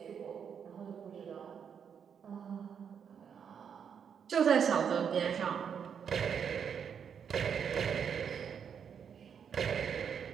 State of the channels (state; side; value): quieter; left; 7.5 dB